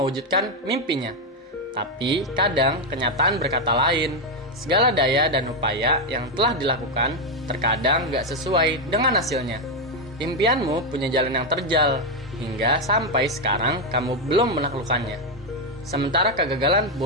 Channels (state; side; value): normal; both; correlation 0.05